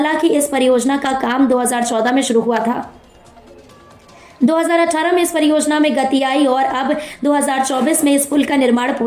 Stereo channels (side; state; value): both; identical; correlation 1.00